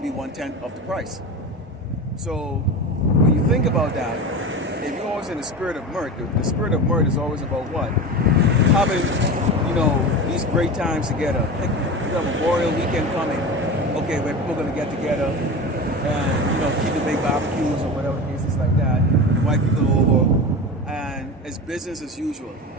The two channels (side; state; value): both; normal; correlation 0.27